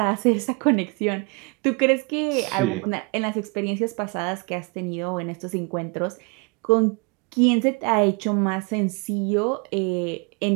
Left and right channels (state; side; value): quieter; left; 30.4 dB